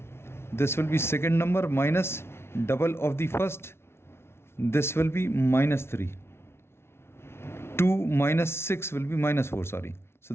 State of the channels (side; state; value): right; late; 0.12 ms